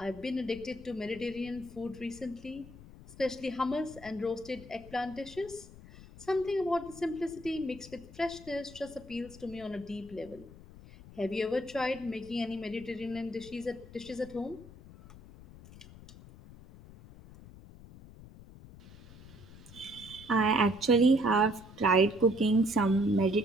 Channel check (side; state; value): left; noise; rumble, 18 dB below the sound